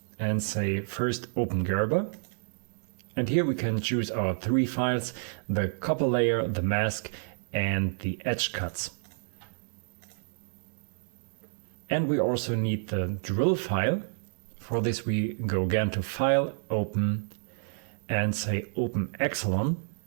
and say first Open Gerber. And here we can choose our three files: the copper layer, the mask, and the edge cuts. And we also need the drill file. For this we go again to File, Open, and say Open Excellent.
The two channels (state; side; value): silent; left; digital silence